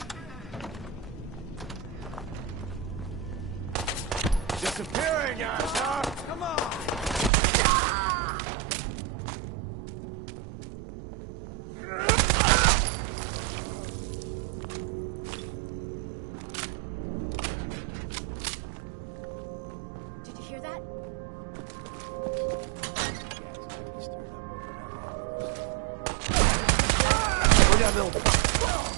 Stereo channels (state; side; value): drops out; left; at 7.3 s